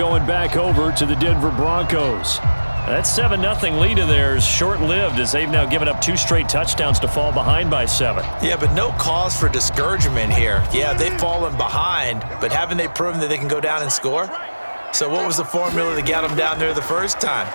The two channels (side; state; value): both; inverted; correlation -1.00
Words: back over to the Denver Broncos. That 7-0 lead of theirs short-lived as they've now given up 2 straight touchdowns to fall behind by 7. Yeah, but no cause for discouragement here. Yeah, they've fallen behind, but haven't they proven that they can go down and score? So what was the formula to get them down there the first time?